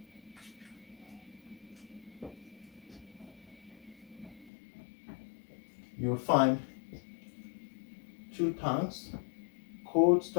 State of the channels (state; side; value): drops out; right; at 4.5 s